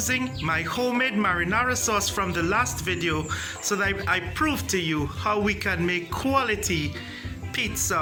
my homemade marinara sauce from the last video so that I prove to you how we can make quality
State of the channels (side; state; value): both; identical; correlation 1.00